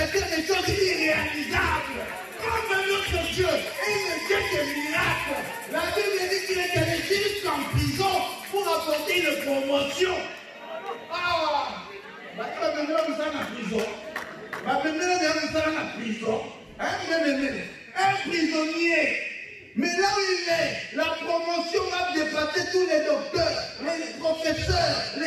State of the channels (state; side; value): identical; both; correlation 1.00